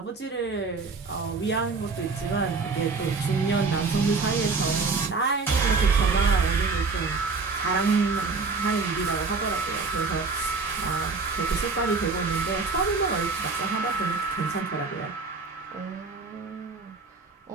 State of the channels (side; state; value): left; quieter; 4.3 dB